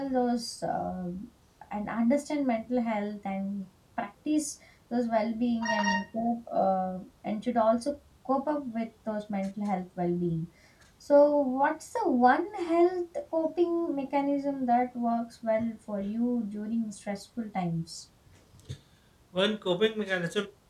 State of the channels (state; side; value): identical; both; correlation 1.00